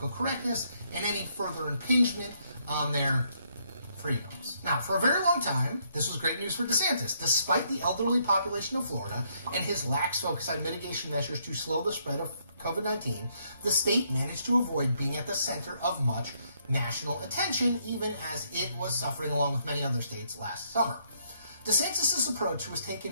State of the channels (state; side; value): inverted; both; correlation -0.72